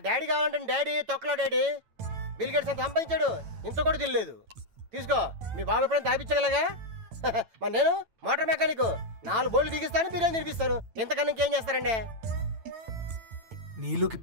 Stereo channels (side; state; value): left; late; 9.0 ms